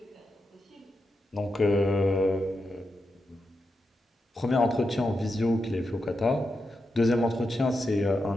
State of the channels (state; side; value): normal; both; correlation 0.87